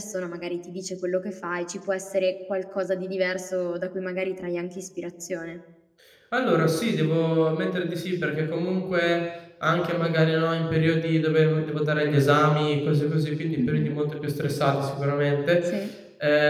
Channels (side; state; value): both; identical; correlation 1.00